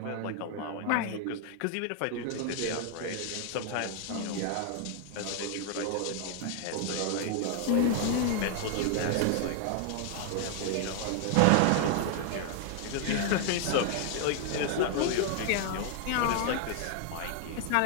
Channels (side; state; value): both; different; correlation 0.00